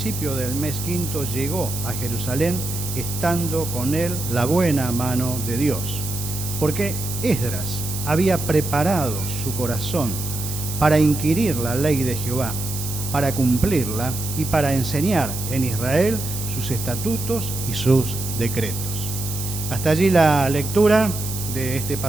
del mes 5º llegó a Jerusalén, estando con él la buena mano de Dios, porque Esdras había preparado su corazón para inquirir la ley de Jehová, para cumplirla y para enseñar en Israel sus estatutos y sus decretos. Hasta allí la lectura de este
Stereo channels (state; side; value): noise; right; hiss, 7 dB below the sound